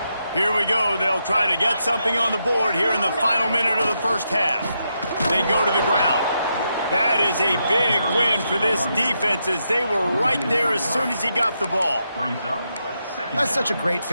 Here we go. They'll try to get something on the board here in the final minute of the first half. They go to the ground. That is a big win for this defense as they were right there as soon as he got the ball. That's such a great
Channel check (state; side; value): inverted; both; correlation -0.82